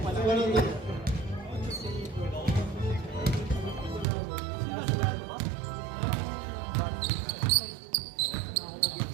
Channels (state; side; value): drops out; left; at 4.0 s